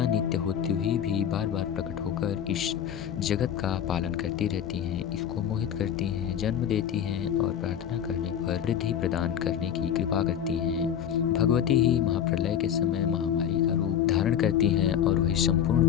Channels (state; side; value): quieter; right; 9.3 dB